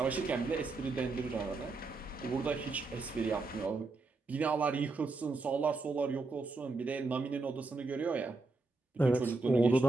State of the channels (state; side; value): quieter; left; 3.5 dB